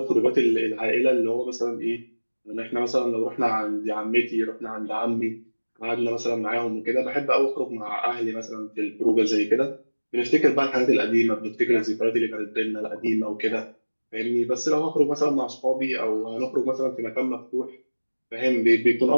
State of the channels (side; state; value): both; inverted; correlation -1.00